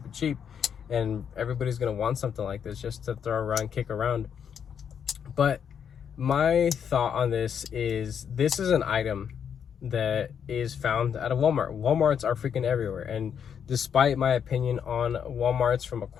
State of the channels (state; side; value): quieter; right; 7.8 dB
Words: cheap, and everybody's gonna want something like this just to throw around, kick around. But my thought on this is an item that is found at a Walmart. Walmarts are freaking everywhere, and despite my opinion on Walmarts from a